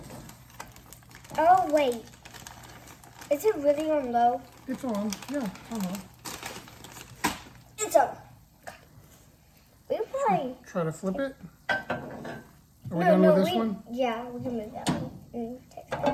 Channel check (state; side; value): identical; both; correlation 1.00